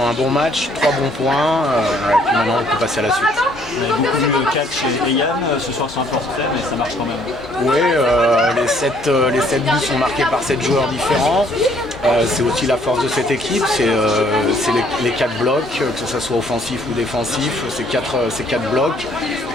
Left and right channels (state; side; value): normal; both; correlation 0.63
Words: un bon match, 3 bons points, et puis maintenant on peut passer à la suite. On a beaucoup vu Catch et Yann ce soir sur un forfait, mais ça marche quand même. Oui, les 7 buts sont marqués par 7 joueurs différents. C'est aussi la force de cette équipe, c'est les 4 blocs, que ce soit offensif ou défensif, c'est 4 blocs.